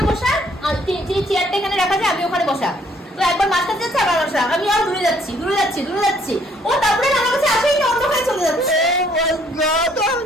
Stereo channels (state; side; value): normal; both; correlation 0.64